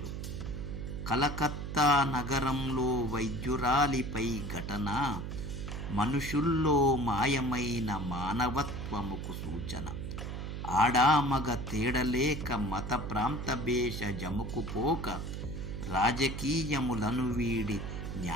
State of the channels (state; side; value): noise; right; hum, 6 dB below the sound